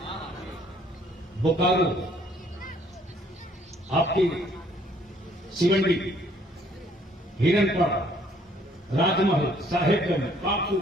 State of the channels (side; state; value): both; normal; correlation 0.62